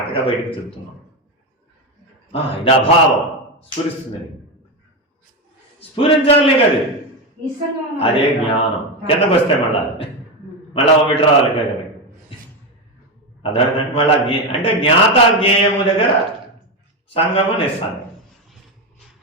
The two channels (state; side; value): normal; both; correlation 0.12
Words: బయటకు చెప్తున్నాం. ఇది అభావం స్ఫురిస్తుంది. స్ఫురించాలి కదా, అదే జ్ఞానం. కిందకు వస్తే మళ్ళా ఒకటి రావాలి కదా. అదే మళ్ళా అంటే జ్ఞాత జ్ఞేయము దగ్గర సంగము నిస్సంగం.